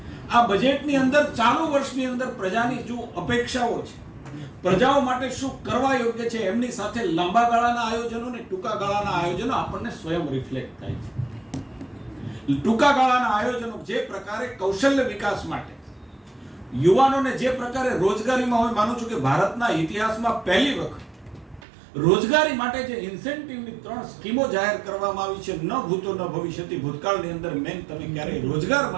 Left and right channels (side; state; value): left; drops out; at 21.6 s